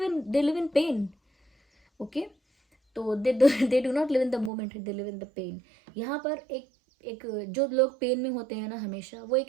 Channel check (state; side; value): drops out; left; at 4.5 s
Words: in pain. Okay, तो they do not live in the moment, they live in the pain. यहाँ पर एक जो लोग पेन में होते हैं ना, हमेशा वो